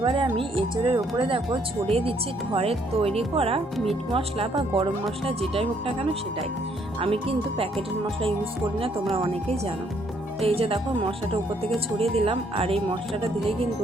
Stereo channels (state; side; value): normal; both; correlation 0.68